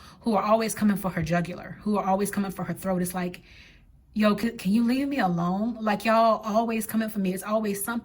who are always coming for her jugular, who are always coming for her throat. It's like, yo, can you leave me alone? Like, y'all always coming for me. It's always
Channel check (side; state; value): both; identical; correlation 1.00